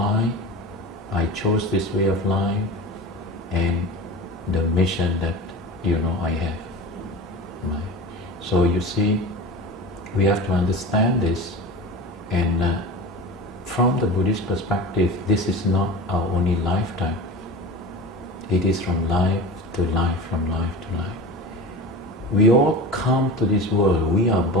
I chose this way of life, and the mission that I have. So you see, we have to understand this, and from the Buddhist perspective, this is not our only lifetime. It is from life to life, from life to life. We all come to this world. We are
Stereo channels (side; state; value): both; normal; correlation 0.32